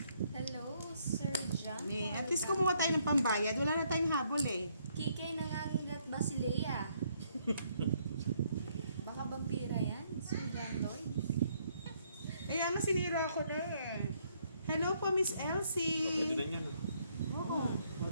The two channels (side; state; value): both; inverted; correlation -0.70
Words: Hello, Sir John. At least kumuha tayo ng pambayad. Wala na tayong habol eh. Kikay nangangagat ba si Leia? Baka vampira yan, Sir John Lloyd. Kaya nga sinira ako na eh. Hello po, Miss Pwede Elsie. na yan. Oo. O,